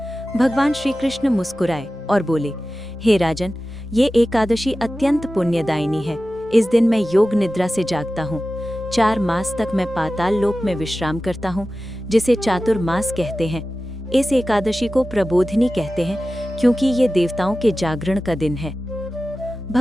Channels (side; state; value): both; normal; correlation 0.95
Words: भगवान श्री कृष्ण मुस्कुराए और बोले, हे राजन, ये एकादशी अत्यंत पुण्यदायिनी है। इस दिन मैं योग निद्रा से जागता हूँ। 4 मास तक मैं पाताल लोक में विश्राम करता हूँ, जिसे चातुर्मास कहते हैं। इस एकादशी को प्रबोधिनी कहते हैं, क्योंकि ये देवताओं के जागरण का दिन है।